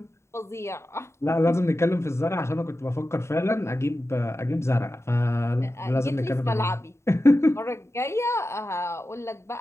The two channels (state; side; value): late; right; 0.13 ms